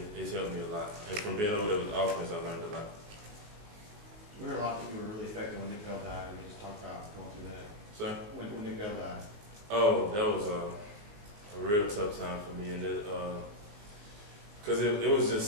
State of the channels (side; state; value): left; late; 19 ms